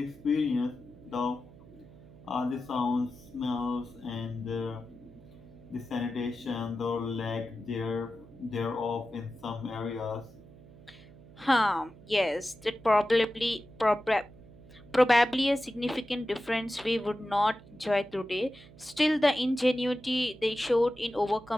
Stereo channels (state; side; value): noise; right; hum, 21 dB below the sound